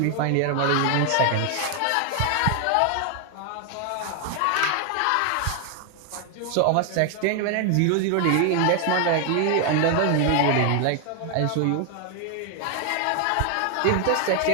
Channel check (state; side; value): different; both; correlation 0.00